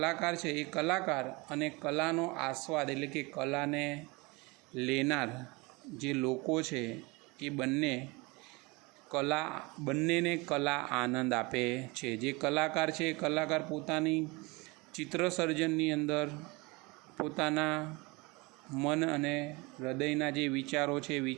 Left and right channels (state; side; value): quieter; left; 25.7 dB